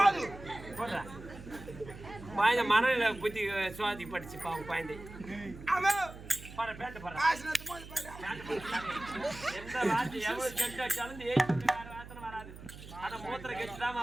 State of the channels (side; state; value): right; noise; hum, 15 dB below the sound